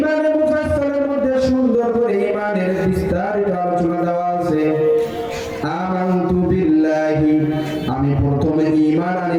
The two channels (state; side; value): identical; both; correlation 1.00